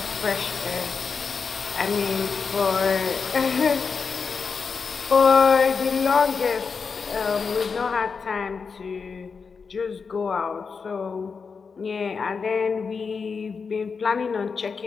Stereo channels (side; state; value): right; quieter; 5.3 dB